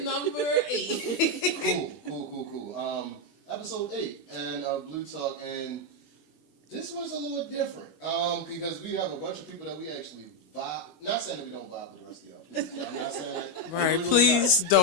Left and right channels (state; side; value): late; right; 22 ms